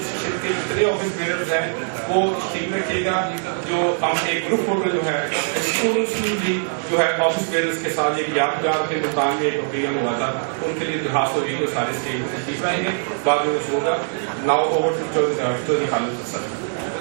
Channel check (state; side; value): silent; left; digital silence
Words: کے جتنے آفس بیئرز ہیں وہ ٹھیک رکھیے گا. جو ہم ایک گروپ فوٹو جو ہے جو ہے آفس بیئرز کے ساتھ ایک یادگار کے مقام میں ایک اوکیزن ہوا تھا ان کے لیے درخواست ہوگی وہ سارے اسٹیج میں تشریف لائیں گے. بعد میں کچھ ہوگا. ناؤ اوور چودھری خالد اسد